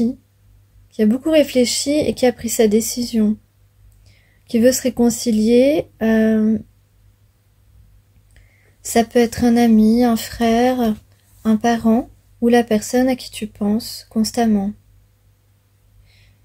et qui a pris sa décision, qui veut se réconcilier. Ça peut être un ami, un frère, un parent ou la personne à qui tu penses constamment.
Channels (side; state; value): both; identical; correlation 1.00